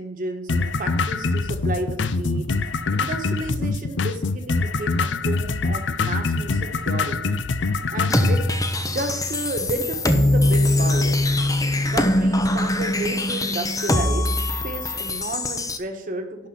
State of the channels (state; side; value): normal; both; correlation 0.67